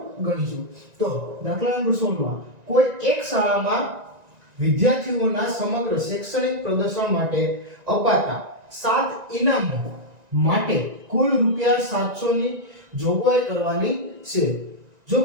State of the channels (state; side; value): late; left; 1.9 ms